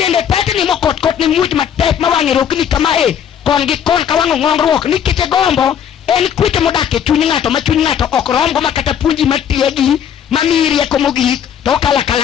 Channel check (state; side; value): quieter; right; 8.8 dB